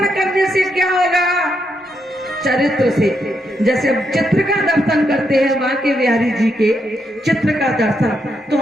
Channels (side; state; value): both; normal; correlation 0.80